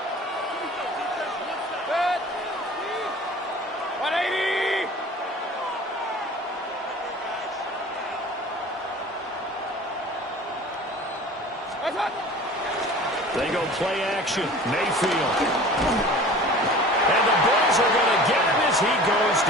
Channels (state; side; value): normal; both; correlation 0.42